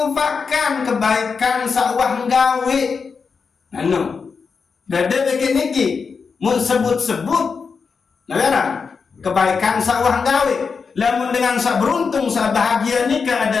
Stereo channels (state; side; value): quieter; right; 5.4 dB